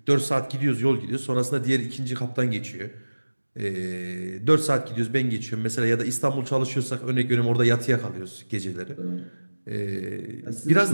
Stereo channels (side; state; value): both; inverted; correlation -1.00